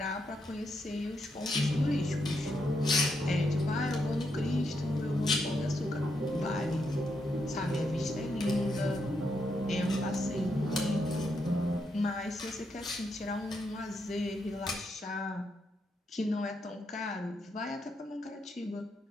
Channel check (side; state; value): both; normal; correlation 0.80